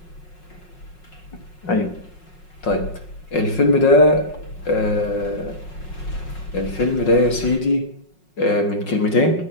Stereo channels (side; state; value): right; late; 5.5 ms